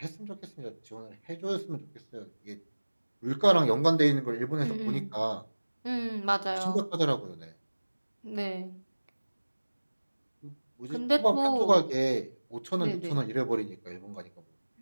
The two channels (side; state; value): both; inverted; correlation -1.00